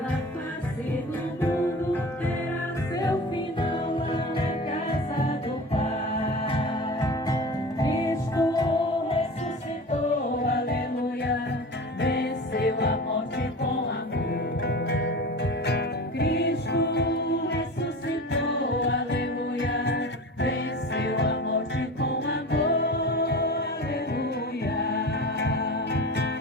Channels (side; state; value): both; normal; correlation 0.33